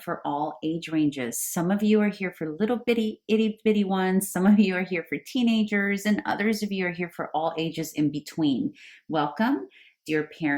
all age ranges. Some of you are here for little bitty, itty bitty ones. Some of you are here for teenagers, and others of you are here for all ages in between. Welcome, dear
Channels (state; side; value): identical; both; correlation 1.00